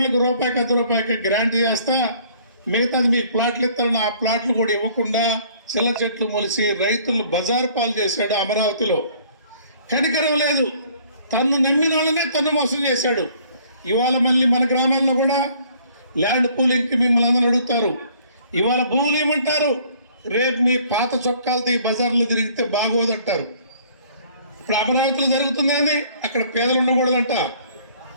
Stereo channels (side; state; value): both; inverted; correlation -0.57